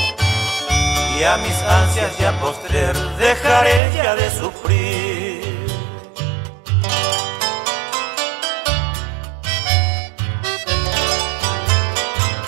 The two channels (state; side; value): drops out; left; at 3.8 s